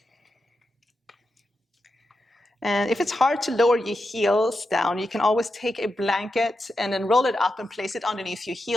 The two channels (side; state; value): both; normal; correlation 0.88